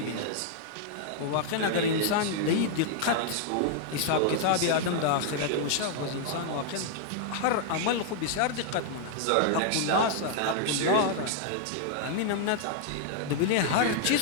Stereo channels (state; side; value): different; both; correlation -0.01